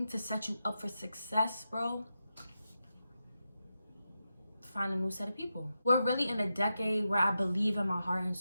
to set you up for success, bro, find a new set of people. We're really in a decade where I believe in my heart and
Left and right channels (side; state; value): both; inverted; correlation -0.88